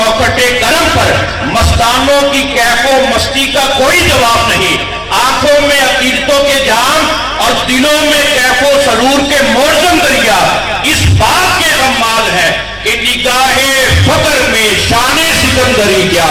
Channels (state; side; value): identical; both; correlation 1.00